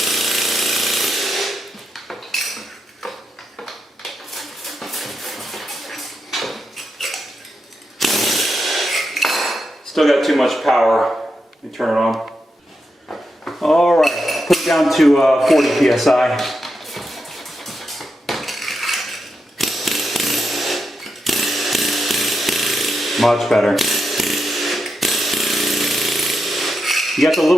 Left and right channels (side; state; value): both; normal; correlation 0.86